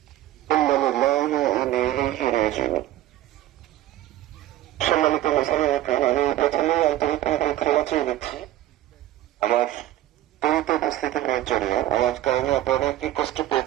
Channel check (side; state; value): left; quieter; 14.2 dB